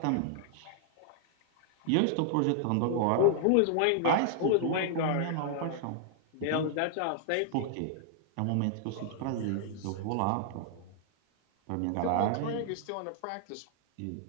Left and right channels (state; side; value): different; both; correlation -0.01